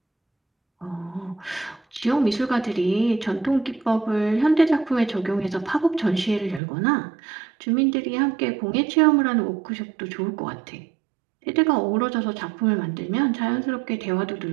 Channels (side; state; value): left; drops out; at 6.6 s